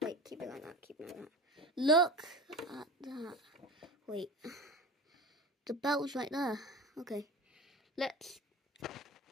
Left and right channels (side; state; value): both; normal; correlation 0.30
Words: wait, keep it like that, keep it like that. Look at that. Wait, the belt's right there. Okay, let's...